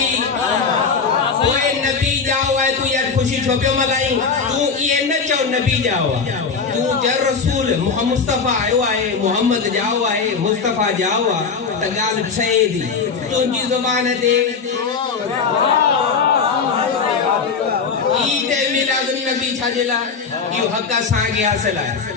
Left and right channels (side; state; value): right; quieter; 5.3 dB